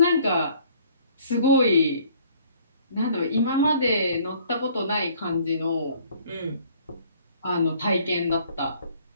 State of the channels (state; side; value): inverted; both; correlation -0.58